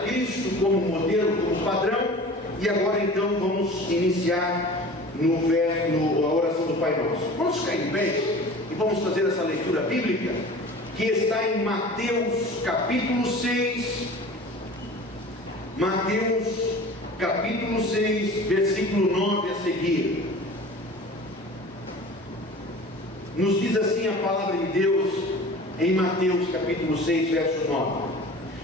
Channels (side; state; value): both; normal; correlation 0.40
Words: Cristo como modelo, como padrão, e agora então vamos iniciar a oração do Pai Nosso. Vamos ficar em pé e vamos fazer essa leitura bíblica que está em Mateus capítulo 6, Mateus capítulo 6, versículo 9 a seguir. Nos diz assim a palavra de Deus em Mateus capítulo 6, verso 9: